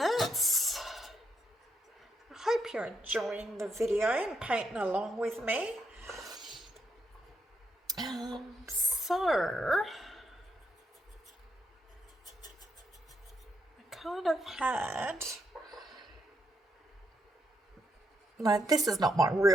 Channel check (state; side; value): normal; both; correlation 0.78